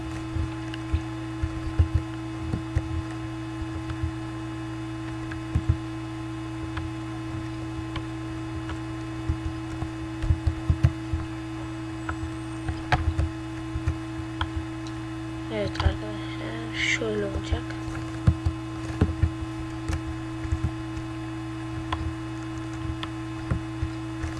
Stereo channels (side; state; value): both; identical; correlation 1.00